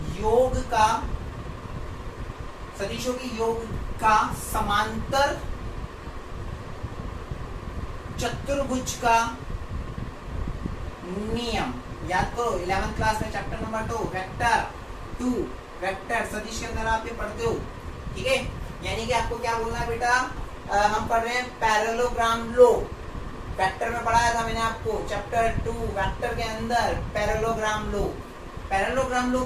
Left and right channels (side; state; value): both; identical; correlation 1.00